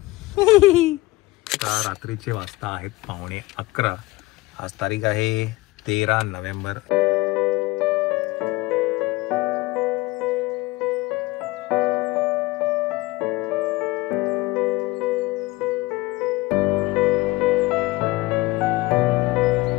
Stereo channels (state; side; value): quieter; right; 20.5 dB